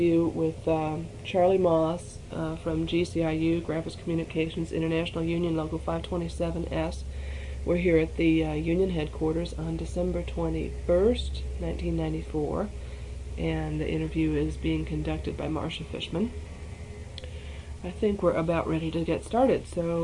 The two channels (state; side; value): identical; both; correlation 1.00